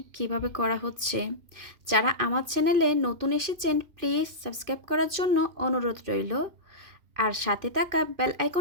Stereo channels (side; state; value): left; late; 2.5 ms